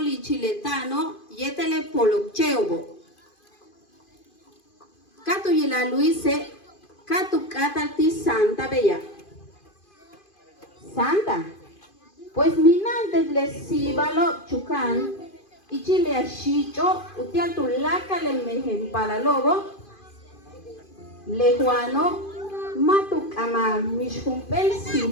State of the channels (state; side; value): late; right; 2.5 ms